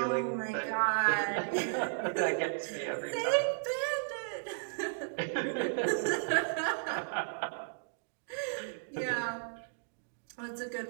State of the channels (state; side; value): silent; left; digital silence